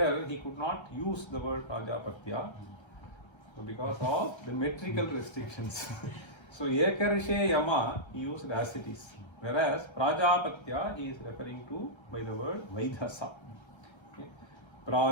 he could not use the word Prajapatya, so because of the metrical restrictions. So Yekarshe Yama he used as it is, whereas Prajapatya he is referring to by the word Vaidhasa. Okay.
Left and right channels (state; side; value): late; right; 1.3 ms